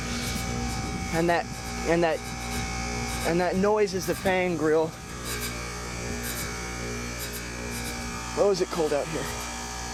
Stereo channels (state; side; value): identical; both; correlation 1.00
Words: And that noise is the fan grill. Oh, is it cold out here?